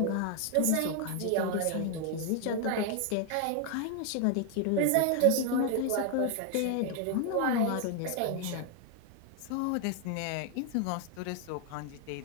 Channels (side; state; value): both; different; correlation 0.01